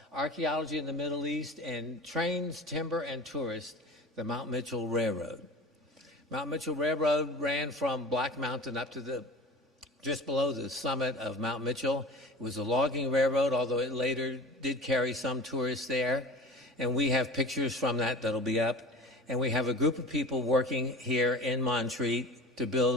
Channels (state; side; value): normal; both; correlation 0.37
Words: Archaeology in the Middle East and Trains, Timber, and Tourists, the Mount Mitchell Railroad. Mount Mitchell Railroad ran from Black Mountain up to just below the summit of Mount Mitchell. It was a logging railroad, although it later did carry some tourists there. And we have pictures from that that'll be up. And we have a group of people working here in Montreat to